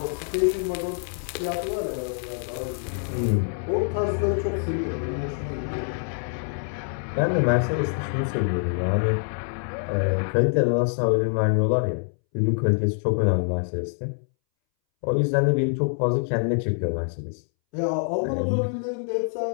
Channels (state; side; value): silent; right; 61 dB below the other